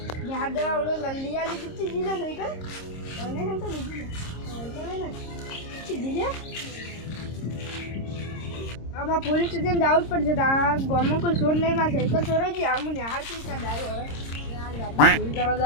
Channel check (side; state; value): right; late; 26 ms